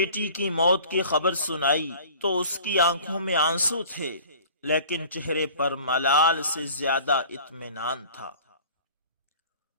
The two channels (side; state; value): both; inverted; correlation -0.46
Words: کی موت کی خبر سنائی تو اس کی آنکھوں میں آنسو تھے، لیکن چہرے پر ملال سے زیادہ اطمینان تھا۔